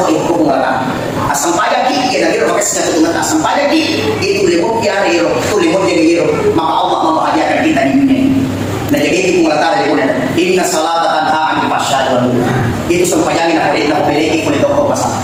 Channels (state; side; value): identical; both; correlation 1.00